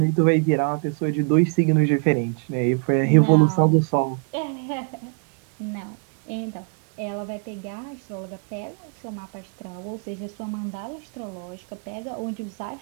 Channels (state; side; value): quieter; left; 39.0 dB